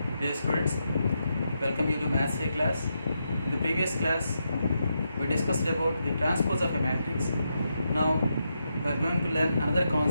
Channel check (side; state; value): both; inverted; correlation -0.84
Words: Dear students, welcome you to Maths A class. In the previous class, we discussed about the transpose of a matrix. Now, we are going to learn another